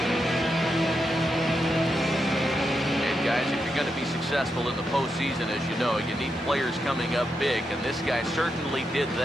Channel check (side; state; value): both; normal; correlation 0.85